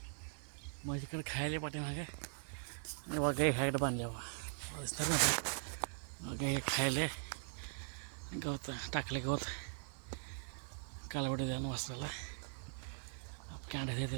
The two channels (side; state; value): left; silent; 50 dB below the other